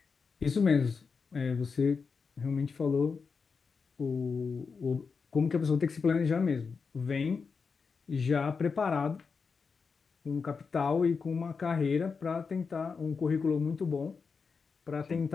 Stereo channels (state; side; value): quieter; right; 5.2 dB